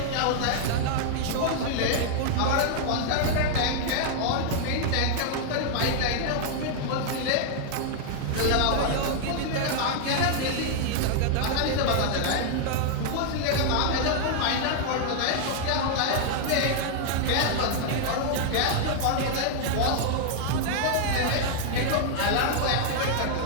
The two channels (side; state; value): both; different; correlation -0.01